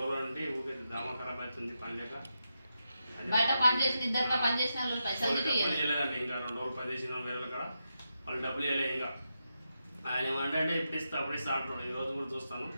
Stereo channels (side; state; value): both; inverted; correlation -0.87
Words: రోజుల నుండి ఊరికే దామా ఖరాబ్ అవుతుంది పని లేక. డబ్బులు చేయలేదండి. ఇంకా 2 రోజులు పని చేసిన వేరే కాడ వాళ్ళు డబ్బులు ఇవ్వలేదు. ఇంకా ఆయన ఏమంటే ఇప్పుడు ఇస్తా అప్పుడు ఇస్తా అంటున్నాడు. ఈ రోజు కూడా చూస్తాను,